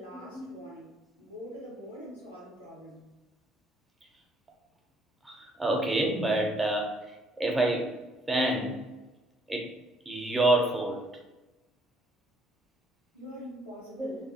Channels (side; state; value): both; normal; correlation 0.66